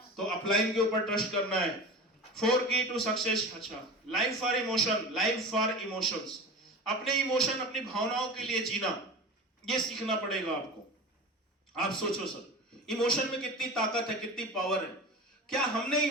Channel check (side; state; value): both; normal; correlation 0.32